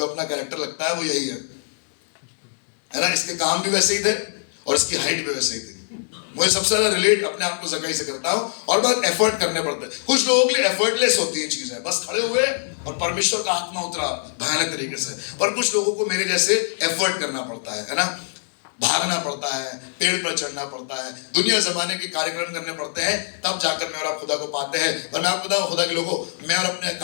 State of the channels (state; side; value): silent; right; digital silence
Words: अपना कैरेक्टर लगता है वो यही है ना? इसके काम भी वैसे ही थे और इसकी हाइट भी वैसे ही थी। मुझे सबसे ज्यादा रिलेट अपने आप को जकाई से करता हूं, और बहुत एफर्ट करने पड़ते हैं। कुछ लोगों के लिए एफर्टलेस होती हैं चीजें, बस खड़े हुए और परमेश्वर का आत्मा उतरा भयानक तरीके से। पर कुछ लोगों को मेरे जैसे एफर्ट करना पड़ता है ना, भागना पड़ता है, पेड़ पर चढ़ना पड़ता है, दुनिया जमाने के कार्यक्रम करने पड़ते हैं, तब जाकर मैं और आप खुदा को पाते हैं। पर मैं आपको बताऊं, खुदा के लोगों, मैं और अपने